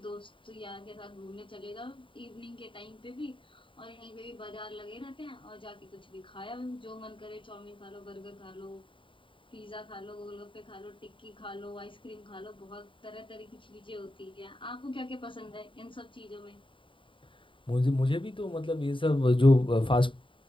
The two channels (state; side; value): late; right; 0.25 ms